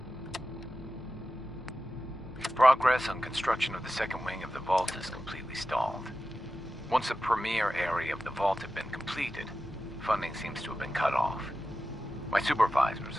Progress on construction of the second wing of the vault is completely stalled. Once the premier area of the vault had been completed, funding seems to have been cut off. My supervisors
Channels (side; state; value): both; normal; correlation 0.93